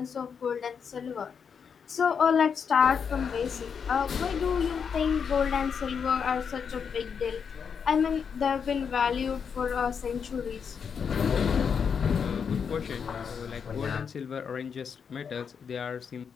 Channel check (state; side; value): quieter; right; 6.6 dB